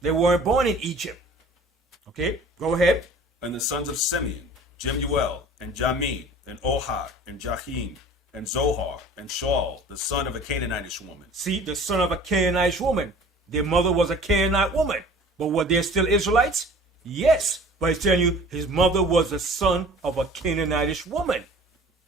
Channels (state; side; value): normal; both; correlation 0.46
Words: They weren't born in Egypt. Okay, go ahead. And the sons of Simeon, Jemuel, and Jamin, and Ohad, and Jahim, and Zohar, and Shaul, the son of a Canaanitish woman. See, the son of a Canaanite woman. Their mother was a Canaanite woman. But were they still Israelites? Yes. But he's telling you, his mother was the son of a Canaanitish woman.